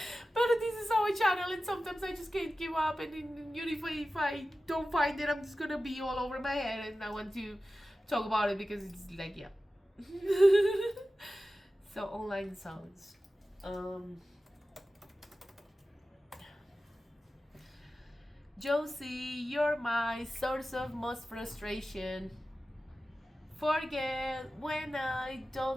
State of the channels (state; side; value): normal; both; correlation 0.94